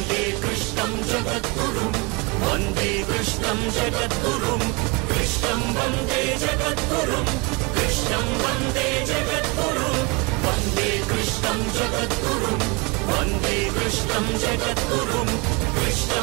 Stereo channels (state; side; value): quieter; left; 28.6 dB